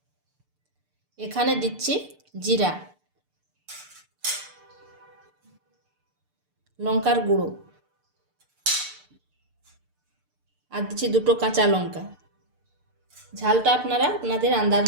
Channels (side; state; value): left; late; 6.7 ms